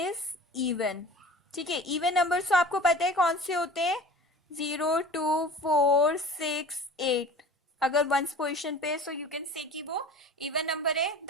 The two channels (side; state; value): both; normal; correlation 0.40